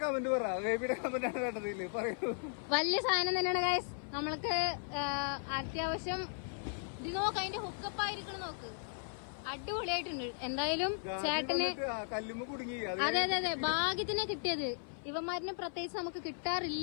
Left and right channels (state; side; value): silent; right; 53 dB below the other